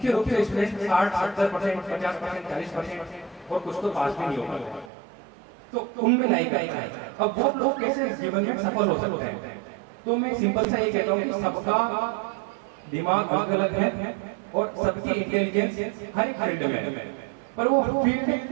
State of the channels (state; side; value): drops out; left; at 4.9 s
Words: रूप से स्टूडेंट 60-70%, 50%, 40% और कुछ तो पास भी नहीं होगा, तो उनमें लाइक है। अब वो लोग कैसे जीवन में सफल हो सकते हैं? तो मैं सिंपल सा ये कहता हूँ कि सबका दिमाग अलग अलग है और सबकी इंटेलिजेंस हर एक फील्ड में है, पर वो